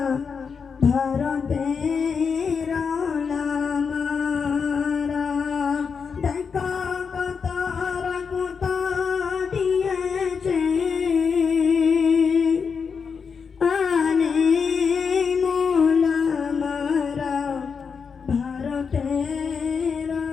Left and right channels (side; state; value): right; quieter; 5.9 dB